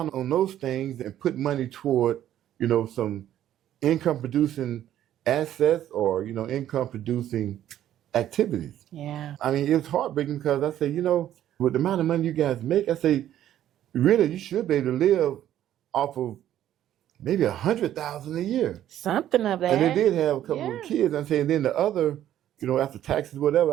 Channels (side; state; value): left; quieter; 11.8 dB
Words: on those things and put money toward, you know, some income producing assets or, income producing activities. Yeah. I mean, it was heartbreaking because I say, with the amount of money you guys make, I say, really, you should be able to live off of maybe $100,000 a year. Something of that. And they did have a couple of kids. I'm saying then the other, after taxes,